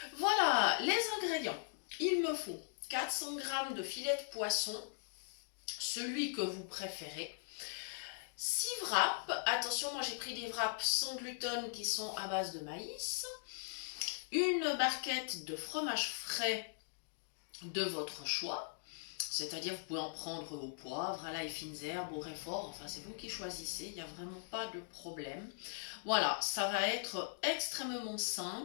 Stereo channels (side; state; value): right; silent; digital silence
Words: Voilà, les ingrédients. Il me faut 400 g de filet de poisson, celui que vous préférez. 6 wraps, attention, moi j'ai pris des wraps sans gluten qui sont à base de maïs. Une barquette de fromage frais de votre choix, c'est-à-dire vous pouvez en prendre au poivre, à l'ail, fines herbes, au réfort, enfin c'est vous qui choisissez, il n'y a vraiment pas de problème. Voilà, ça va être extrêmement